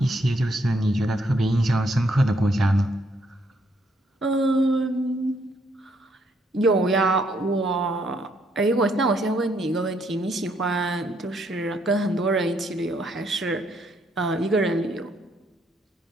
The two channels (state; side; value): normal; both; correlation 0.72